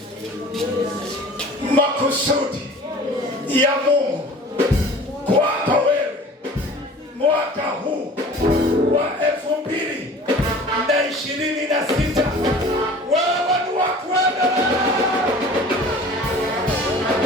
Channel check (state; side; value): normal; both; correlation 0.44